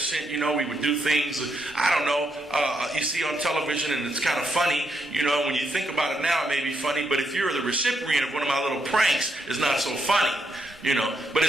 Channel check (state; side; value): normal; both; correlation 0.79